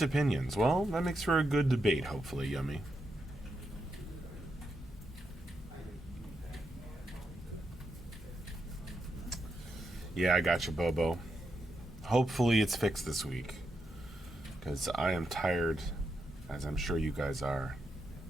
opinions. Well, that makes for a good debate, hopefully, Yummy. Yeah, I got you, Bobo. Hopefully it's fixed this week, because I am tired, as I'm sure you guys are,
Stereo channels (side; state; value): both; normal; correlation 0.84